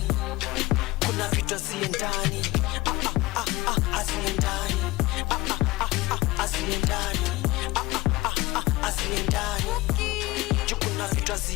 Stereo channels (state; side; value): quieter; right; 19.8 dB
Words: Kuna vitu asiendani asiendani asiendani asiendani. Kuna vitu